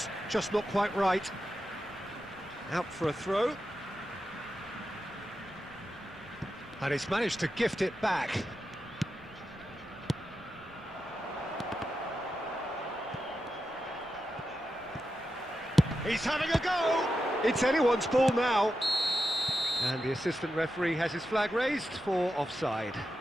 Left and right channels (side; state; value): right; noise; rumble, 27 dB below the sound